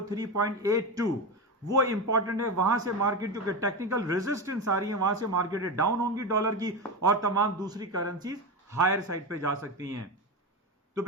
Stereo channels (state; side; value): normal; both; correlation 0.18